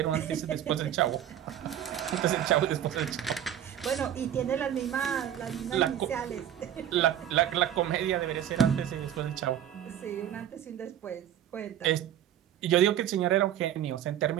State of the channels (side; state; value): left; quieter; 10.6 dB